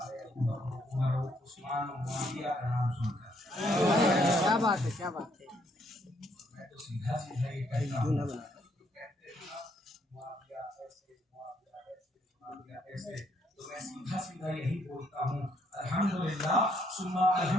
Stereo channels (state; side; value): normal; both; correlation 0.70